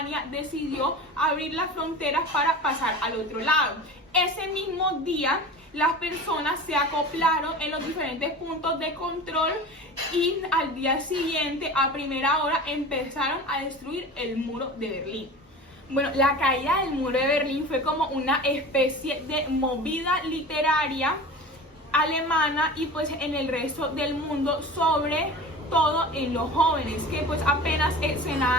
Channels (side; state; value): both; normal; correlation 0.35